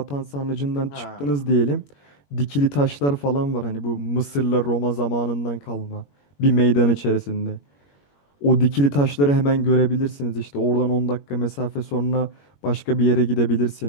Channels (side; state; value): right; late; 21 ms